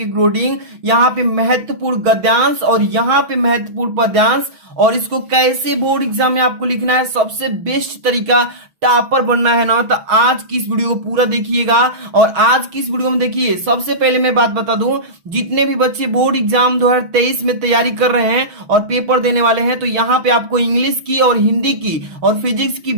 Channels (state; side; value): late; left; 6.1 ms